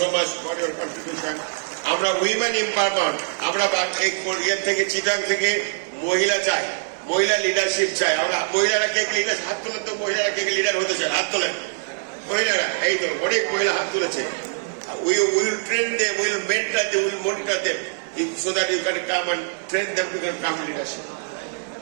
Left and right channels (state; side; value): silent; left; digital silence